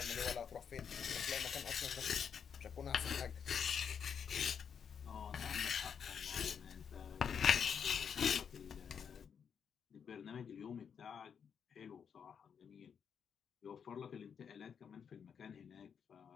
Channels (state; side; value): quieter; right; 7.3 dB